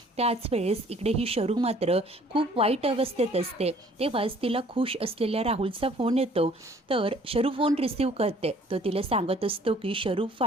त्याच वेळेस इकडे ही शरू मात्र खूप वाईट अवस्थेत असते. तेव्हाच तिला खुश असलेल्या राहुलचा फोन येतो. तर शरू फोन रिसीव करते. तो तिला सांगत असतो की शरू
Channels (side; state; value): both; normal; correlation 0.56